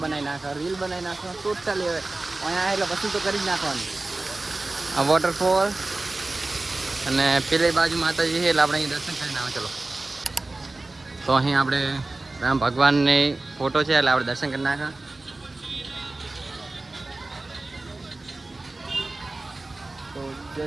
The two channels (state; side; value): quieter; left; 3.1 dB